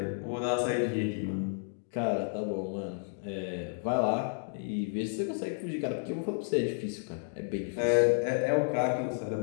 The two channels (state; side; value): silent; right; digital silence